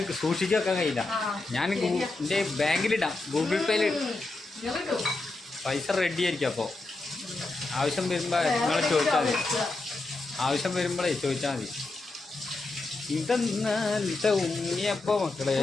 സൂക്ഷിച്ചു വെക്കാൻ കഴിയില്ല. ഞാൻ എൻ്റെ ബാങ്കിലിടാം, ഗൂഗിൾ പേയിൽ പൈസ റെഡി ആയിരിക്കും. അപ്പോൾ ആവശ്യം വരുമ്പോൾ നിങ്ങൾ ചോദിച്ചാൽ മതി. ആവശ്യം വരുമ്പോഴേ ചോദിച്ചാൽ മതി. ഇതെന്നാ ഉണ്ണിയപ്പോ മക്കളെ,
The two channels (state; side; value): quieter; right; 3.2 dB